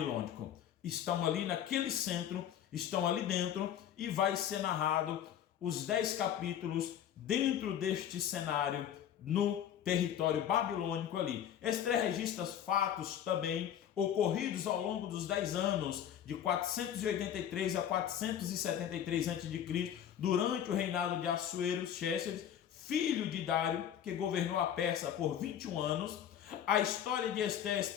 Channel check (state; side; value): quieter; right; 9.9 dB